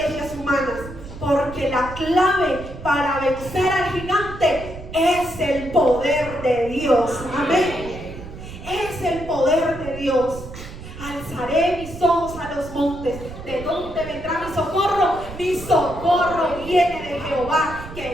humanas, porque la clave para vencer al gigante es el poder de Dios. Amén. Es el poder de Dios. Alzaré mis ojos a los montes. ¿De dónde vendrá mi socorro? Mi socorro viene de Jehová,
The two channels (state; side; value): noise; right; rumble, 13 dB below the sound